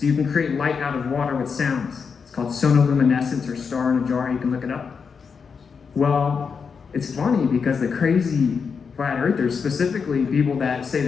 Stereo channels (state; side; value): quieter; right; 5.8 dB